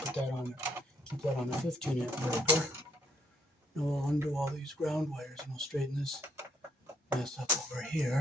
put that on, keep that on a 15-amp breaker. Now we'll undo all these ground wires and we'll straighten this mess up over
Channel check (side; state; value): both; normal; correlation 0.71